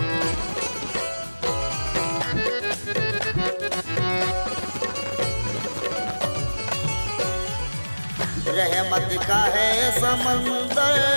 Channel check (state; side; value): inverted; both; correlation -1.00